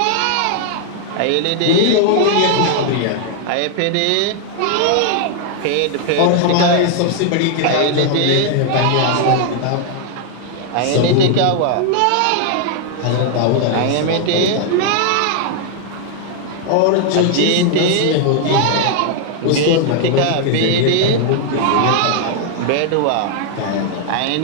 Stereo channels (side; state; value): both; different; correlation 0.00